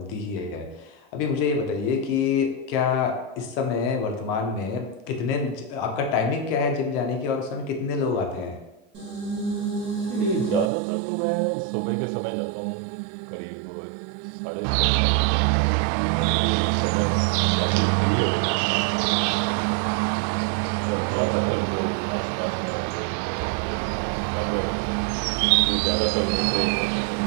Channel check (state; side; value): drops out; left; at 10.7 s